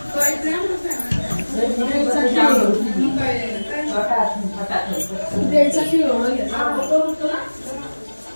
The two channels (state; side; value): inverted; both; correlation -1.00